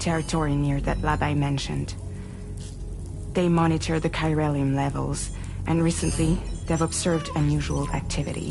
near that lab I mentioned. They monitor the chiralium levels, and recently, they've observed unusual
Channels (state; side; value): identical; both; correlation 1.00